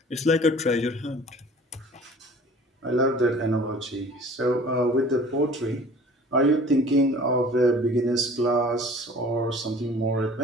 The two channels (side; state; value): both; normal; correlation 0.47